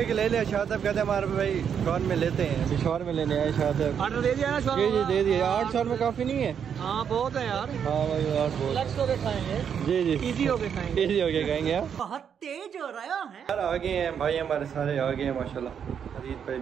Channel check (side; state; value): left; quieter; 7.8 dB